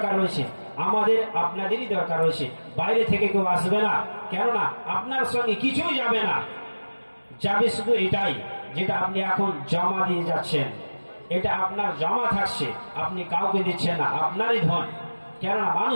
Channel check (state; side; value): inverted; both; correlation -1.00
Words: রয়েছে? আমাদের আপনাদেরই দরকার রয়েছে। বাইরে থেকে কেউ আসবে না, কেননা আপনার সঙ্গে কিছুই যাবে না, যাবে শুধু এটাই যেটা আপনি এখন জমা দিয়ে যাচ্ছেন, এটা আপনার জমা থাকছে, আপনি কাউকে দিচ্ছেন না, আপনারই ধন। কেননা